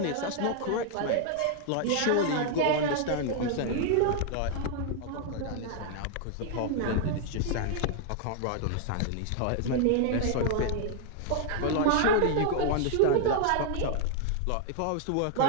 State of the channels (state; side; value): different; both; correlation 0.00